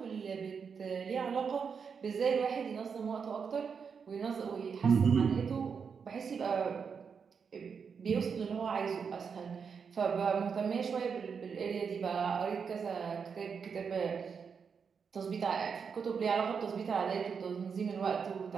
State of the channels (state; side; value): quieter; left; 6.2 dB